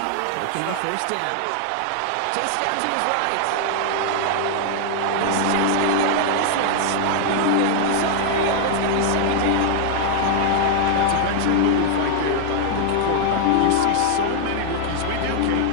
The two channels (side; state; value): both; different; correlation 0.00